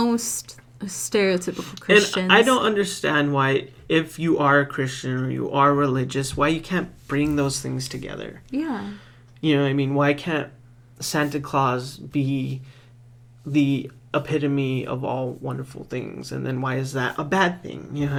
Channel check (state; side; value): identical; both; correlation 1.00